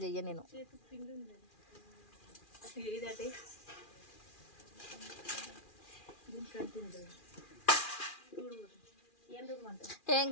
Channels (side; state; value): right; late; 2.4 ms